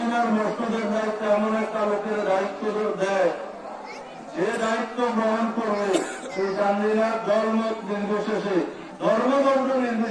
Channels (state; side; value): identical; both; correlation 1.00